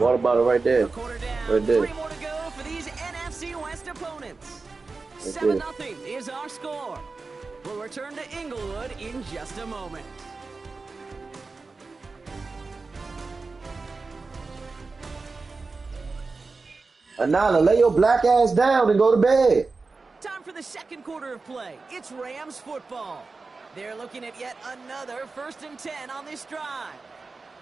about it right there? Right there. 3 more to go for these NFC West opponents. 7-0 is our score. We'll return to Inglewood in just a moment. Anana, lay your black ass down and go to bed. Time for the second quarter of play. It's Rams football. They're looking at yet another 1st and 10 on this drive.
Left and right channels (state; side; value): quieter; left; 4.0 dB